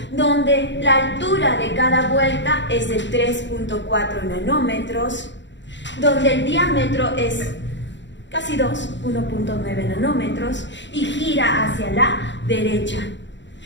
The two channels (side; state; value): right; late; 0.53 ms